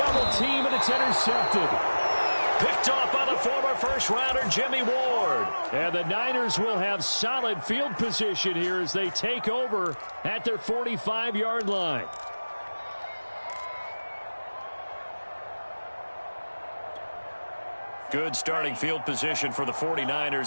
team, and it's intercepted. Picked off by the former first-rounder Jimmy Ward. And the Niners will have solid field position here as they take over at their 45-yard line. Good starting field position for the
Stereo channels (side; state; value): both; inverted; correlation -1.00